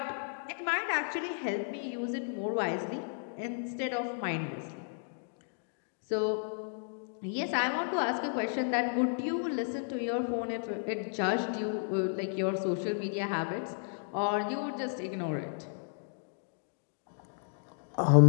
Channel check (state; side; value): silent; right; digital silence